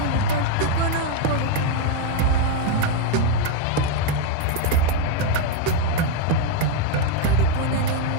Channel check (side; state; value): both; different; correlation 0.01